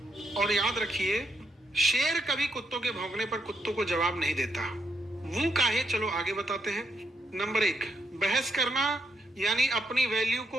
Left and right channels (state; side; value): normal; both; correlation 0.78